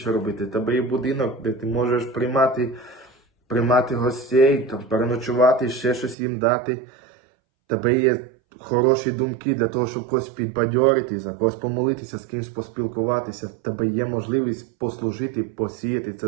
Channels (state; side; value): drops out; left; at 6.2 s